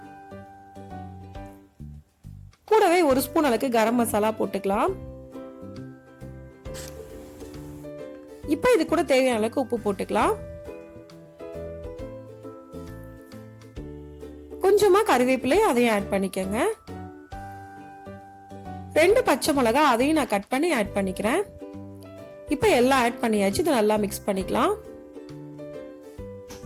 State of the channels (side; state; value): both; identical; correlation 1.00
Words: கூடவே 1 ஸ்பூன் அளவுக்கு கரம் மசாலா போட்டுக்கலாம். இப்போ இது கூட தேவையான அளவுக்கு உப்பு போட்டுக்கலாம். கொஞ்சமா கறிவேப்பிலை அதையும் ஆட் பண்ணிக்கங்க. 2 பச்சை மிளகா அதையும் நான் கட் பண்ணி ஆட் பண்ணிக்கிறேன். இப்போ எல்லாம் ஆட் பண்ணியாச்சு. இதை நல்லா மிக்ஸ் பண்ணிக்கலாம்.